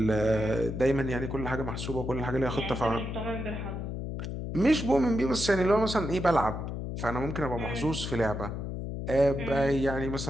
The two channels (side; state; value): left; noise; hum, 5 dB below the sound